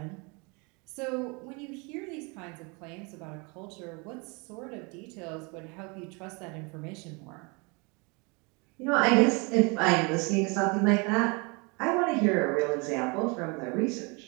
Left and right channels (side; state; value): left; quieter; 30.2 dB